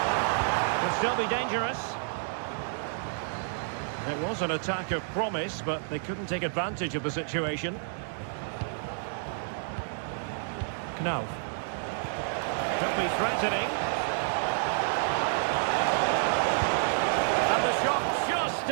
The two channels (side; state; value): left; silent; digital silence